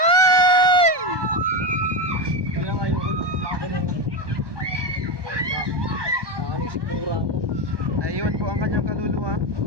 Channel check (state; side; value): late; left; 1.2 ms